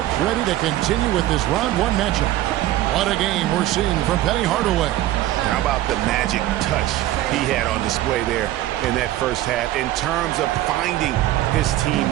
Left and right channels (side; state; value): left; quieter; 14.6 dB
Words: ready to continue with this round 1 matchup. What a game we're seeing from Penny Hardaway. How about the magic touch he had on display there in that first half in terms of finding his